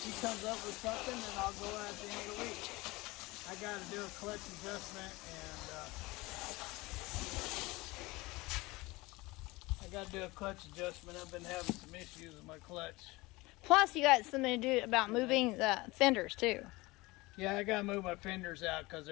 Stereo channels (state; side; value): quieter; right; 22.0 dB